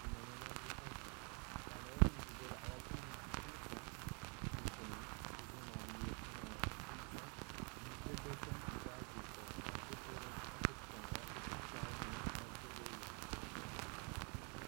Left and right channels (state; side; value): quieter; left; 35.9 dB